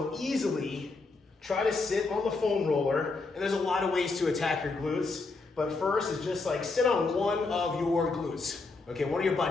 easily try to sit on the foam roller, and there's a lot of ways to attack your glutes, but first is just like sit on one of your glutes, okay, one of your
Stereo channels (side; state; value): right; quieter; 3.8 dB